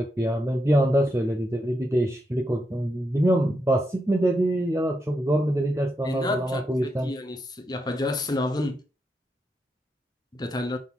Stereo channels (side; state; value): both; normal; correlation 0.83